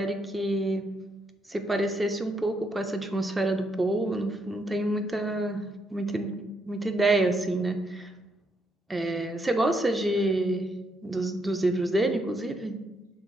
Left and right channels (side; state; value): both; normal; correlation 0.76